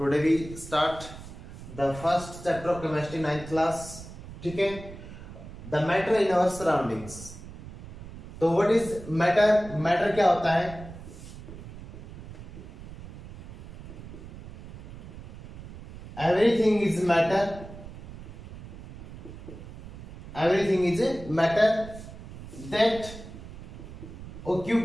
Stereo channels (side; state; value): right; noise; rumble, 13 dB below the sound